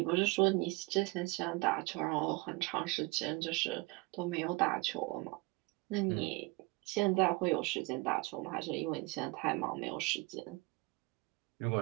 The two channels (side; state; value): left; quieter; 25.1 dB